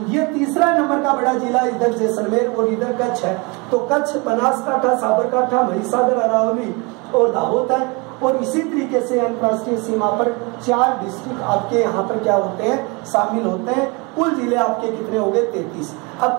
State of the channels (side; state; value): left; quieter; 28.9 dB